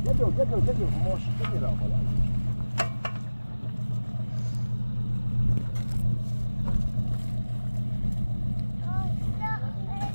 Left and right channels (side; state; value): both; inverted; correlation -1.00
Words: Gel, moş, gel ama lan.